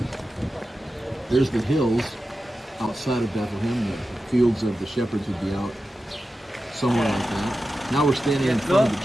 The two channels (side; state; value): both; normal; correlation 0.92